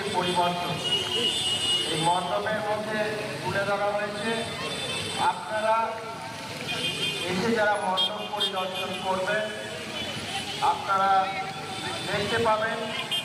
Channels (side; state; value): both; identical; correlation 1.00